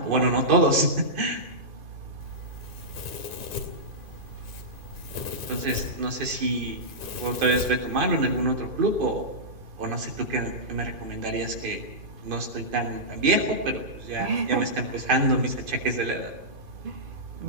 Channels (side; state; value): left; late; 2.5 ms